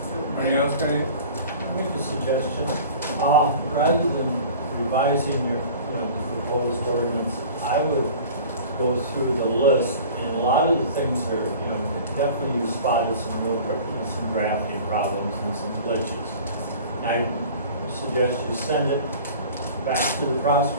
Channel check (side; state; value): both; inverted; correlation -0.42